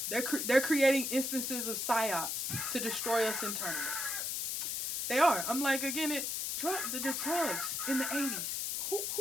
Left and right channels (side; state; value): left; noise; hiss, 1 dB below the sound